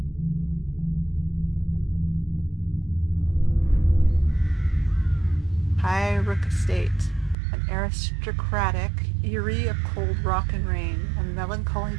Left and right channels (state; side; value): drops out; left; at 7.4 s